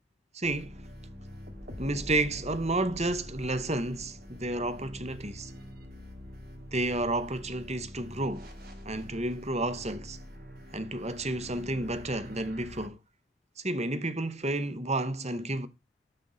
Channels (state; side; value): normal; both; correlation 0.48